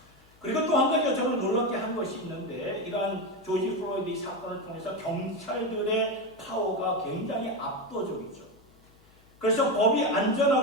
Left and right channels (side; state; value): left; noise; hum, 29 dB below the sound